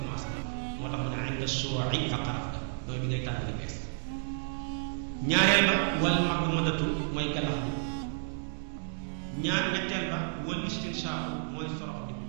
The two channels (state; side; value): silent; left; digital silence